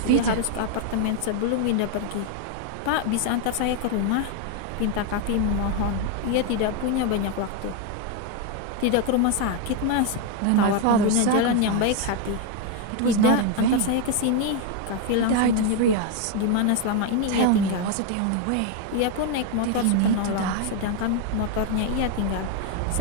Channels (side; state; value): both; different; correlation 0.01